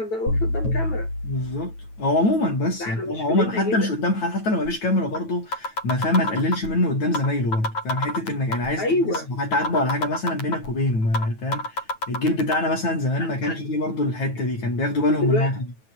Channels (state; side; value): late; right; 9.2 ms